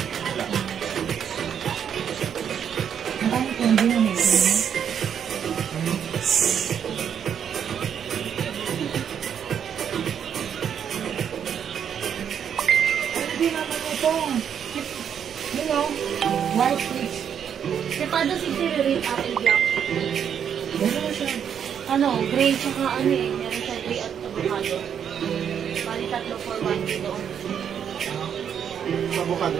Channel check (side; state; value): left; quieter; 8.3 dB